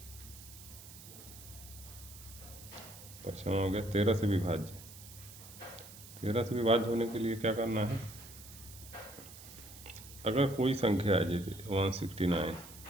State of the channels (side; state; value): right; noise; hiss, 16 dB below the sound